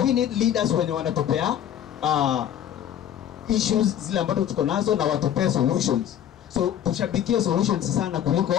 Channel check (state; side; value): quieter; right; 10.2 dB